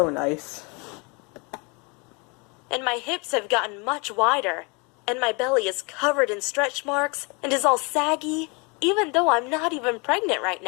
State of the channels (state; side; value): quieter; right; 30.5 dB